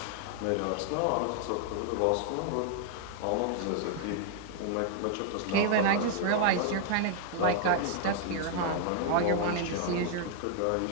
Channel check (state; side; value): different; both; correlation 0.00